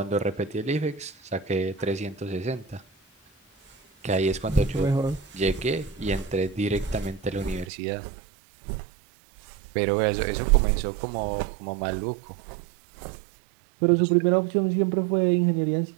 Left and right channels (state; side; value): drops out; left; at 7.7 s